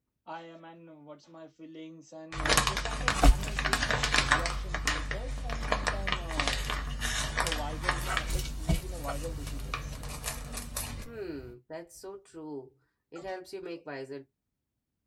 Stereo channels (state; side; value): identical; both; correlation 1.00